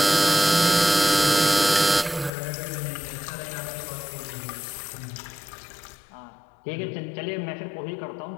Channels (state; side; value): drops out; right; at 2.3 s